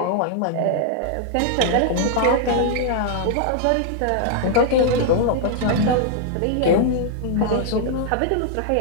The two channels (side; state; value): both; different; correlation -0.01